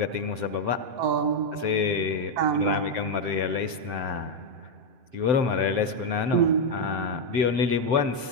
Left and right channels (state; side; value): late; left; 7.8 ms